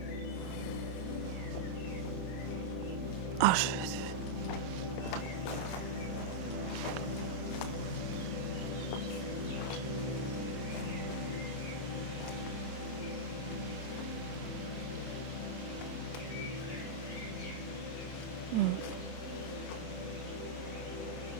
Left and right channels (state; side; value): late; right; 27 ms